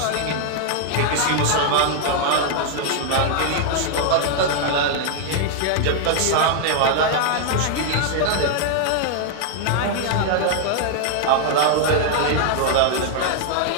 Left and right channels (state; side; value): different; both; correlation 0.00